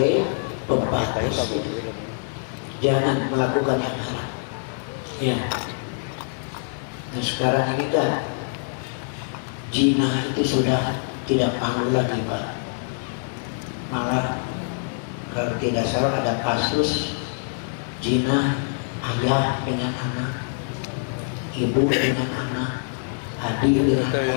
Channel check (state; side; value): silent; right; digital silence